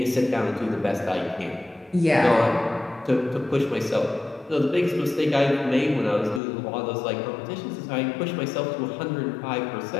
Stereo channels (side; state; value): right; drops out; at 6.4 s